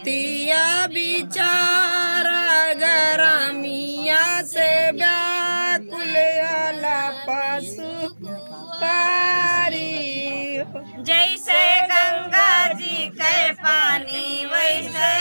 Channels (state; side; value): inverted; both; correlation -1.00